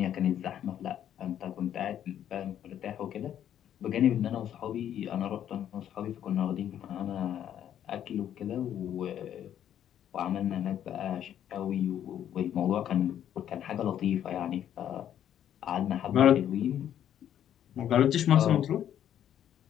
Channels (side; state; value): right; quieter; 10.3 dB